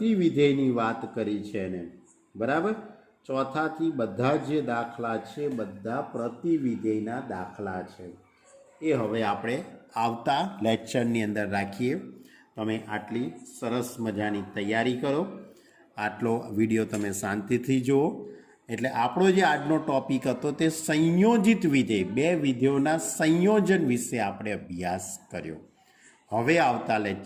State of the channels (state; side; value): identical; both; correlation 1.00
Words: વાત કરી છે એને. બરાબર? ચોથાથી બધા જે દાખલા છે બધા પ્રતિવિધેયના દાખલા છે. એ હવે આપણે આવતા લેક્ચરની અંદર રાખીએ. તમે આટલી સરસ મજાની તૈયારી કરો. આટલો વિડીયો તમે શાંતિથી જુઓ. એટલે આપણો જે આજનો ટોપિક હતો તે સંયોજિત વિધેય, 2 વિધેયોના સંયોજન વિશે આપણે અભ્યાસ કર્યો. હવે આવતા